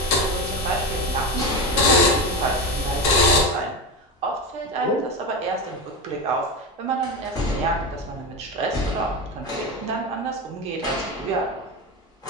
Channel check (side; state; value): both; normal; correlation 0.20